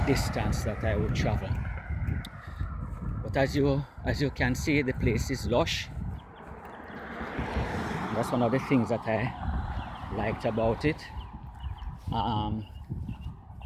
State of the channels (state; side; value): identical; both; correlation 1.00